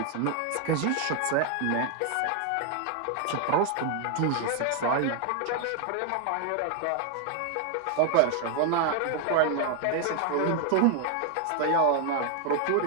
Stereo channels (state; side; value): different; both; correlation 0.00